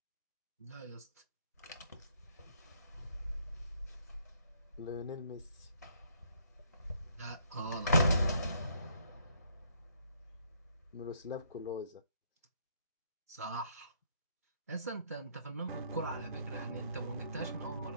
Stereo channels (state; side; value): inverted; both; correlation -0.67